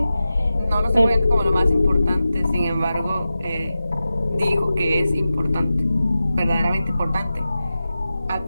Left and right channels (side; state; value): both; inverted; correlation -0.93